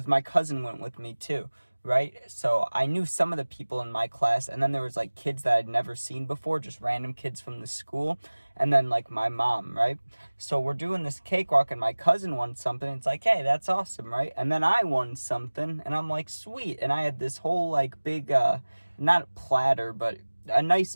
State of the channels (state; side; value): inverted; both; correlation -1.00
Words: my cousin went with me too, right? So I knew some of the people in my class, and then there was like kids that I'd never seen before, just random kids from the school, and then like my mom, right? So we're doing this cakewalk and my cousin won something. It's like, hey, that's awesome, right? And then I won something and I'm like, sweet. And I had this whole like big not platter, but a nice